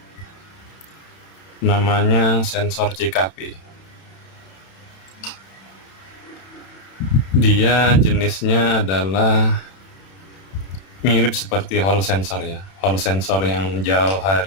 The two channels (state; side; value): late; right; 31 ms